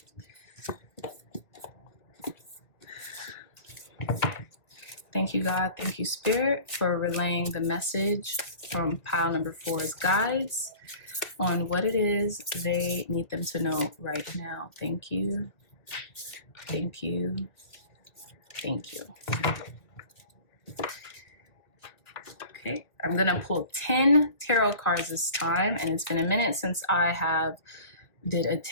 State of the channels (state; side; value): late; right; 2.1 ms